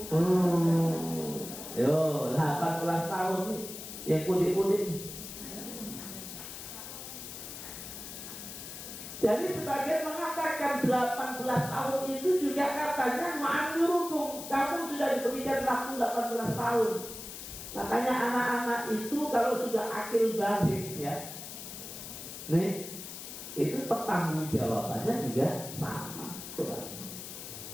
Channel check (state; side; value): noise; left; hiss, 10 dB below the sound